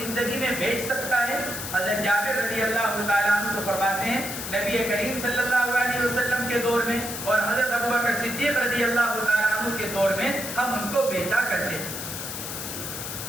میں بیچ سکتا ہے، حضرت جابر رضی اللہ تعالیٰ عنہ کو فرماتے ہیں نبی کریم صلی اللہ علیہ وسلم کے دور میں اور حضرت ابوبکر صدیق رضی اللہ تعالیٰ عنہ کے دور میں ہم ان کو بیچا کرتے ہیں.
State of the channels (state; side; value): noise; left; hiss, 7 dB below the sound